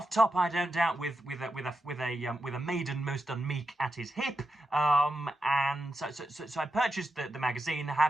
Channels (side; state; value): both; normal; correlation 0.88